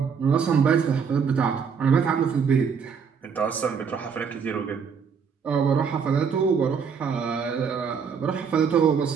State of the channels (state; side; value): quieter; left; 6.3 dB